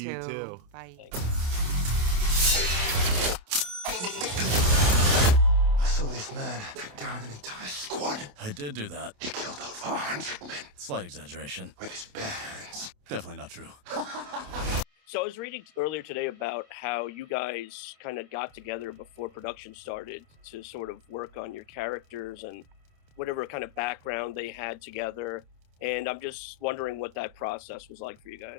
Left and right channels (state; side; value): late; left; 28 ms